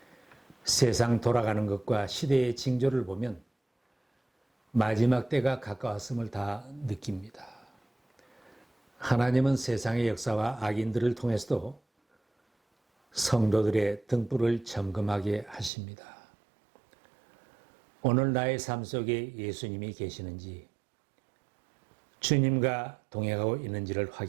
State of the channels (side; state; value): left; drops out; at 15.7 s